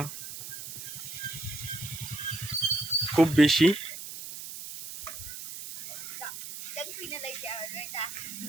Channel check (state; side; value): noise; right; hiss, 9 dB below the sound